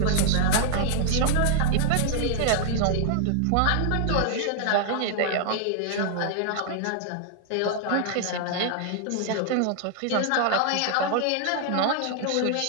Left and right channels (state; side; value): different; both; correlation 0.00